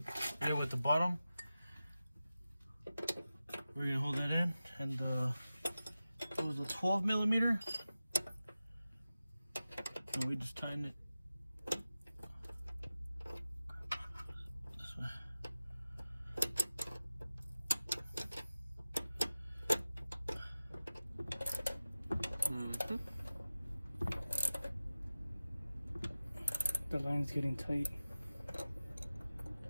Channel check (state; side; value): inverted; both; correlation -0.95